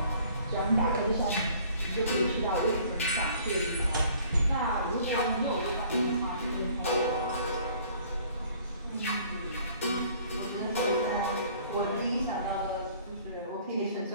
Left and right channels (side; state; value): both; inverted; correlation -0.55